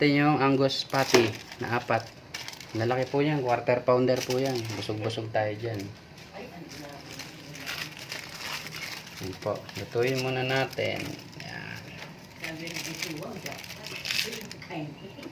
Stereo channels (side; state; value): both; identical; correlation 1.00